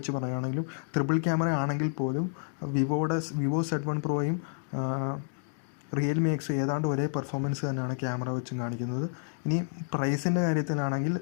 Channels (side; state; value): right; silent; digital silence